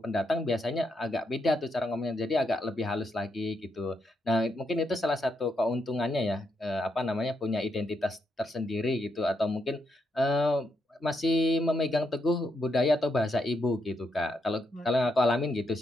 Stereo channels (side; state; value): both; normal; correlation 0.80